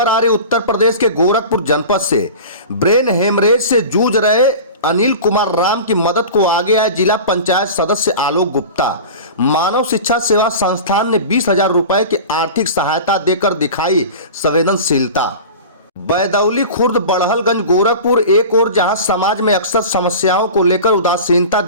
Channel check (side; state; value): both; inverted; correlation -0.34